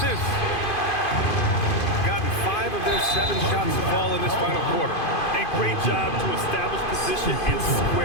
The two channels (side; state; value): right; late; 2.5 ms